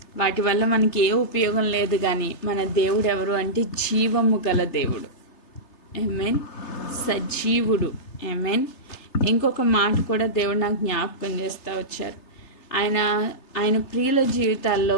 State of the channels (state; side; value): late; right; 3.3 ms